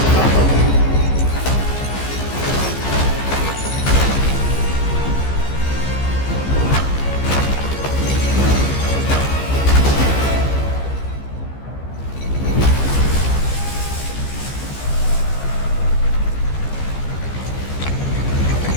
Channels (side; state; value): right; late; 15 ms